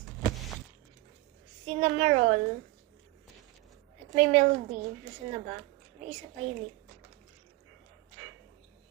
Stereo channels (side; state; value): left; quieter; 19.5 dB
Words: Cinnamoroll. At may melody. Nasaan na ba? May isa pa yun eh.